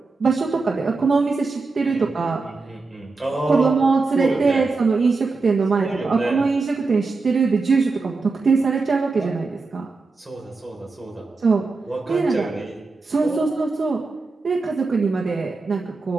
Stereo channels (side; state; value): left; quieter; 3.9 dB